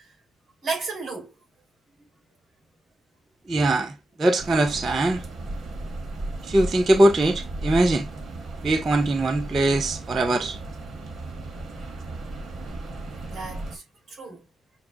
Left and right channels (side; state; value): both; normal; correlation 0.90